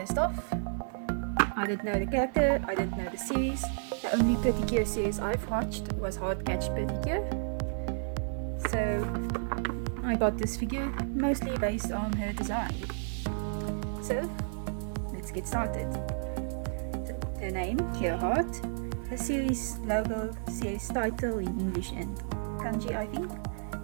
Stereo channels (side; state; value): left; silent; 57 dB below the other